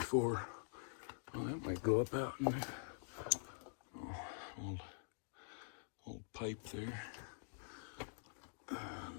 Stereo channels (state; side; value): silent; right; digital silence